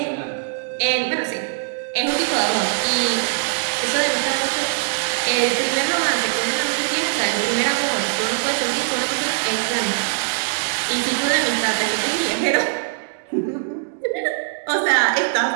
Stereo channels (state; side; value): silent; left; digital silence